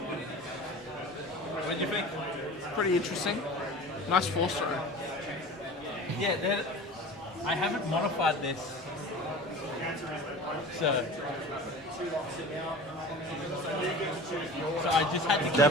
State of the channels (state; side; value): normal; both; correlation 0.37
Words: What do you think? Pretty interesting. Nice force throw. Yeah, I haven't modified this. So I just had to keep